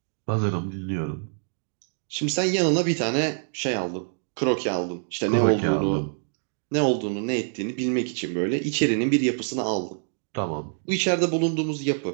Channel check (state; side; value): silent; left; 61 dB below the other